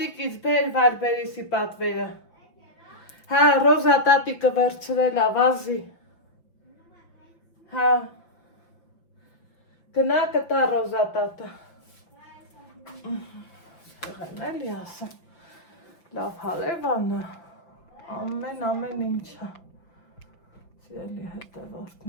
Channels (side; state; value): right; late; 5.8 ms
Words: բեր Վարբերիսի պատվերը, հա, Ռոզա տատիկը վերցրել ա, վազի, հա, գնա կտա Ռոզա տատը, Եղեն էլի ասեմ, լավ հարևանը, ամեն ինչը, սիրելի